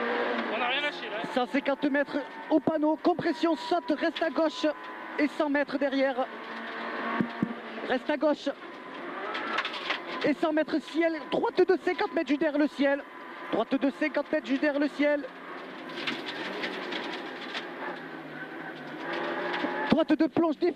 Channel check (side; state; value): both; identical; correlation 1.00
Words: On n'a rien lâché là. 150 mètres au panneau, compression, saute, reste à gauche et 100 mètres derrière. Reste à gauche et 100 mètres ciel, droite de 50 mètres juste derrière le ciel. Droite de 50 mètres juste derrière le ciel. Droite de plonge